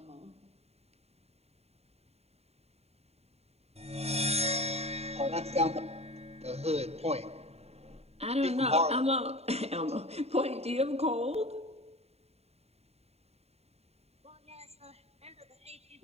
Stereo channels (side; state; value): left; late; 0.30 ms